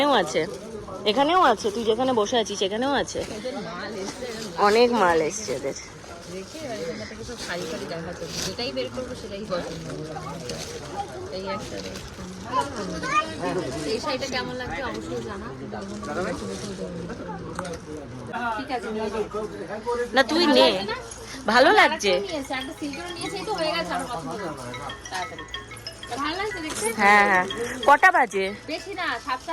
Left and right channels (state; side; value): identical; both; correlation 1.00